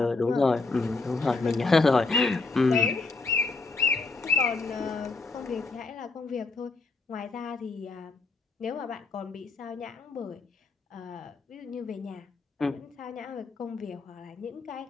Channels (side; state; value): right; quieter; 3.8 dB